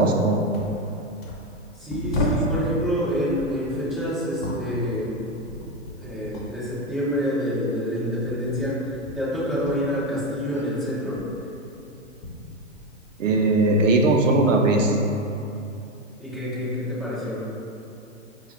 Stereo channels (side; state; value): both; normal; correlation 0.11